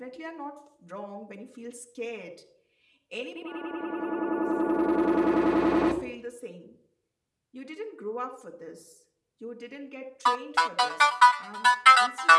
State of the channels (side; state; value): both; identical; correlation 1.00